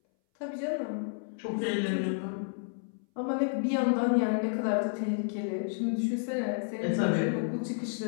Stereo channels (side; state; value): right; silent; 57 dB below the other